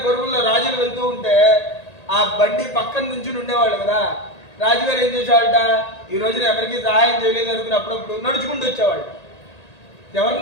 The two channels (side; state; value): right; late; 1.8 ms